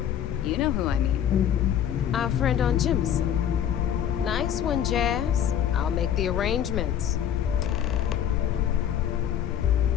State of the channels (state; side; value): quieter; right; 9.8 dB